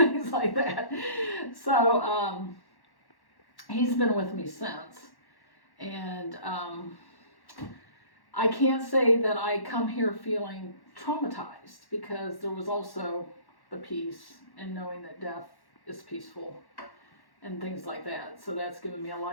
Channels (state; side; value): late; right; 1.1 ms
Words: like that. So, he's been with me since. And I can't say that I come here feeling traumatized, because there was also the peace and knowing that death is peaceful and things like that. So that's given me a